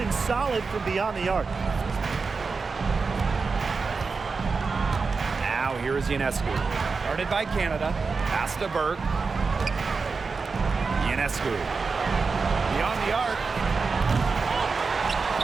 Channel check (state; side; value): quieter; left; 4.6 dB